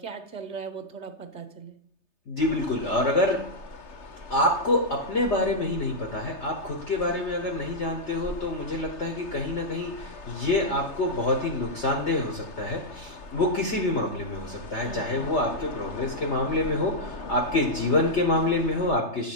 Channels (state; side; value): late; right; 3.3 ms